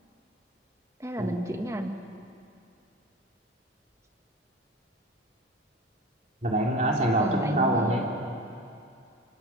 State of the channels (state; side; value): normal; both; correlation 0.34